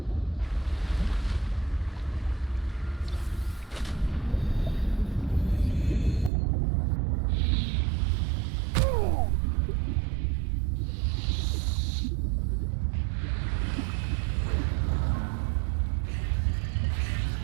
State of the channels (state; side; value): drops out; left; at 6.3 s